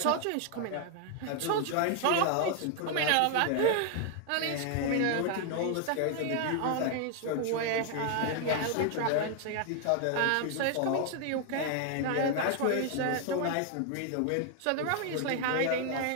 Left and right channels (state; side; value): different; both; correlation 0.00